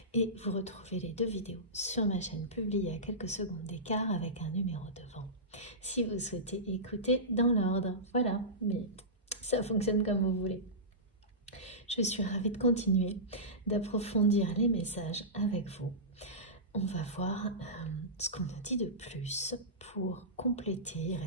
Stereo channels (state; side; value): normal; both; correlation -0.18